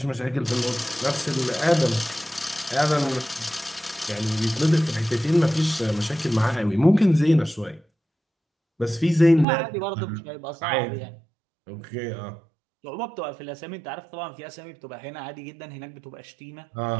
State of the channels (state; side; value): drops out; left; at 9.5 s